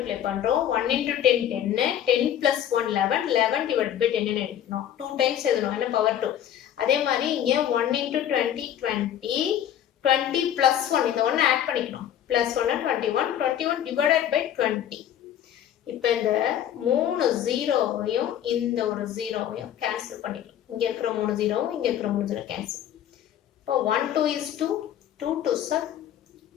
பண்றோம். 1 into 10 10, 10 plus 1 11, 11 divided by 10 ன்னு எடுக்கணும். 2 டைம்ஸ் எழுதணும், என்ன பவர் 2. அதே மாதிரி இங்க 1 into 20 20, 20 plus 1, இந்த 1 ஆட் பண்ணிக்கணும். plus 1 21, 21 divided by 20. இப்போ இந்த 3 0வையும் இந்த ஒரு 0வையும் கேன்சல் பண்ணிக்கலாம். இங்க இருக்கிற 3 0வும் இங்க இருக்கிற 3 0 கேன்சல். இப்போ 1 2 is 2, 2 2s are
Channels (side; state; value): right; quieter; 10.6 dB